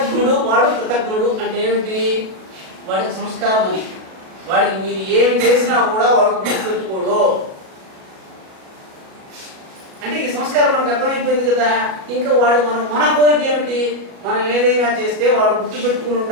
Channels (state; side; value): late; left; 37 ms